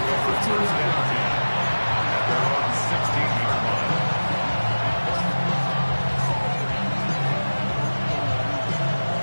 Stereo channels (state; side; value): inverted; both; correlation -1.00